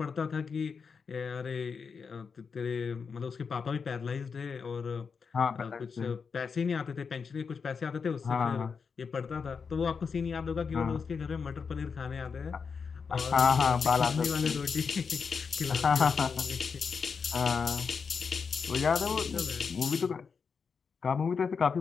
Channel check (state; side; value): quieter; right; 5.7 dB